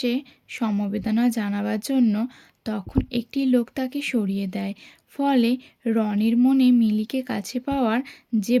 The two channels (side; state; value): both; identical; correlation 1.00